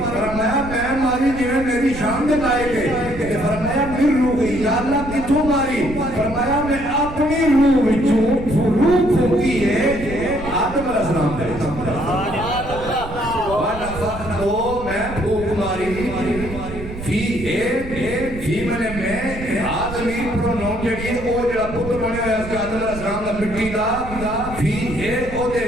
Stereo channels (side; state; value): right; noise; rumble, 11 dB below the sound